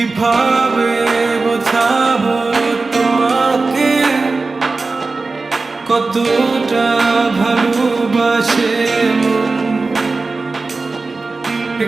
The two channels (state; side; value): quieter; left; 3.8 dB